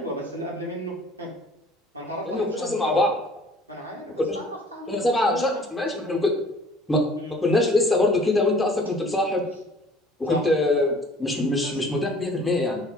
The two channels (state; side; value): normal; both; correlation 0.52